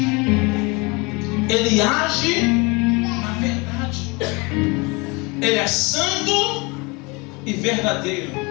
Ele age na verdade. Ele é santo e verdadeiro.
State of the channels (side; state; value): right; quieter; 27.4 dB